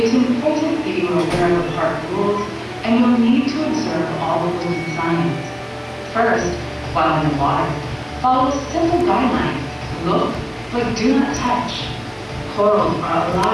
important that you are aware of the park rules, and you'll need to observe all the rules and signs. First, while in the water, follow simple guidelines. Look, but do not touch. Corals are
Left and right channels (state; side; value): identical; both; correlation 1.00